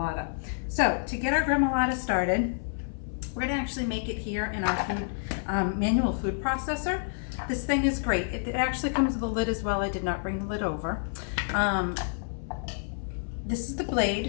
So to get our gremolata started, we're going to actually make it here in our manual food processor. This thing is great. It actually comes with a lid as well. I did not bring the lid over. This is the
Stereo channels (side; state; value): right; silent; 59 dB below the other